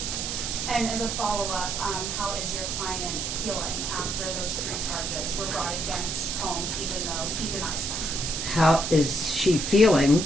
And as a follow-up, how is your client feeling after those 3 charges were brought against Combs, even though he denies them? How is she feeling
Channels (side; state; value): right; noise; hiss, 3 dB below the sound